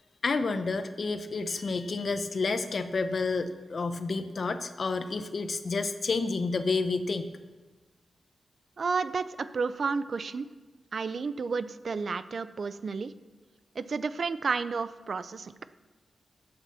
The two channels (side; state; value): both; normal; correlation 0.87